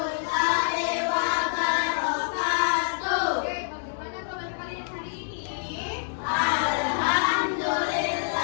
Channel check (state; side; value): silent; right; digital silence